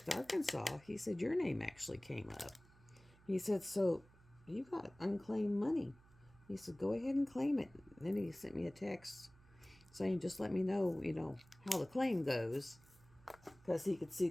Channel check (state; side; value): noise; right; hum, 26 dB below the sound